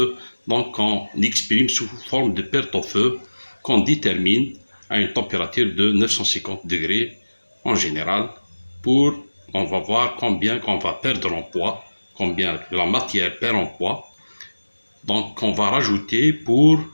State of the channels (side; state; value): both; inverted; correlation -1.00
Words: On exprime sous forme de perte au feu qu'on détermine à une température de 950 degrés en général pour on va voir combien qu'on va perdre en poids, combien la matière perd en poids. Donc, on va rajouter pour